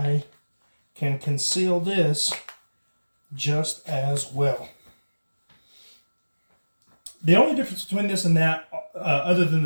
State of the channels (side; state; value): both; inverted; correlation -1.00